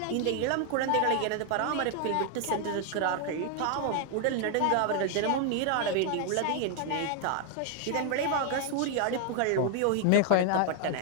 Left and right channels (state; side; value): different; both; correlation 0.00